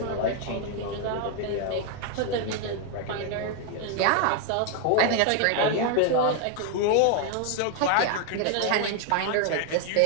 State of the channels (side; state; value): both; different; correlation 0.01